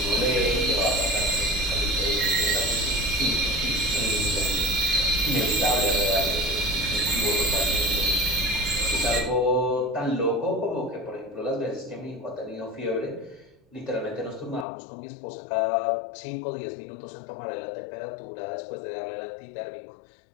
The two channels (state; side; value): drops out; right; at 14.7 s